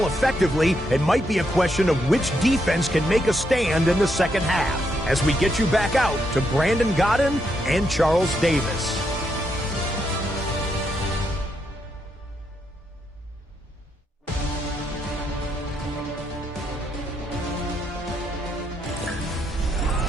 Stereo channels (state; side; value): normal; both; correlation 0.79